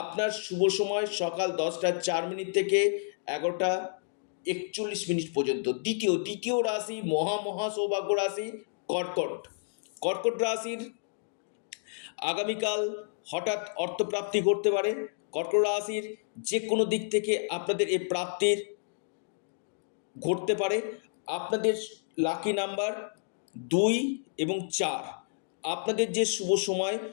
শুভ সময় সকাল 10টা 4 মিনিট থেকে 11টা 41 মিনিট পর্যন্ত। দ্বিতীয় রাশি মহা সৌভাগ্য রাশি কর্কট। কর্কট রাশির আগামীকাল হঠাৎ অর্থপ্রাপ্তি ঘটতে পারে। কর্কট রাশির যে কোনো দিক থেকে আপনাদের এই প্রাপ্তির ঘটতে পারে। আপনাদের লাকি নাম্বার 2 এবং 4। আপনাদের যে শুভ সময়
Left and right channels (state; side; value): silent; right; digital silence